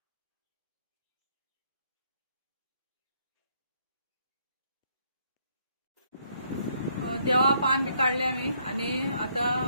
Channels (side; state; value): both; inverted; correlation -0.71